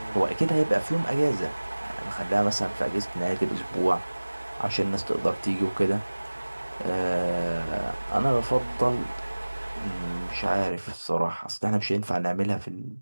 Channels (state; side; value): inverted; both; correlation -1.00